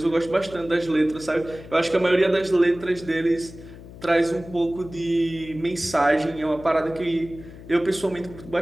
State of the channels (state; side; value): noise; left; hum, 17 dB below the sound